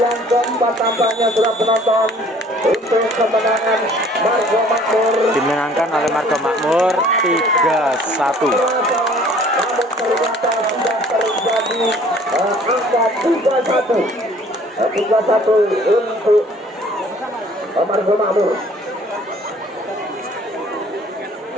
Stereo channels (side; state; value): both; normal; correlation 0.54